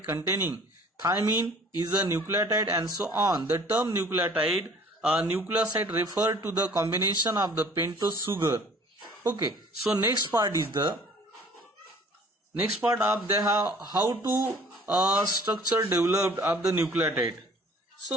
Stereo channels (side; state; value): both; normal; correlation 0.51